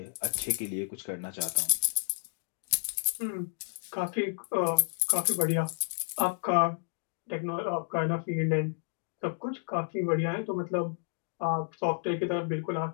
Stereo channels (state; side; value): silent; right; 57 dB below the other